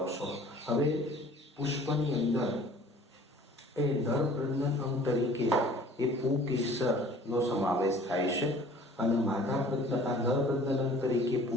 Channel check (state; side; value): normal; both; correlation 0.50